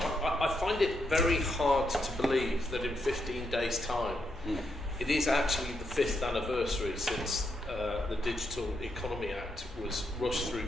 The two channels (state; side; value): normal; both; correlation 0.80